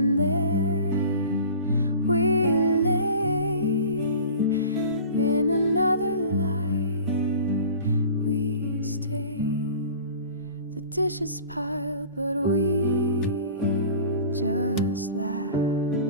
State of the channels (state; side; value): inverted; both; correlation -0.41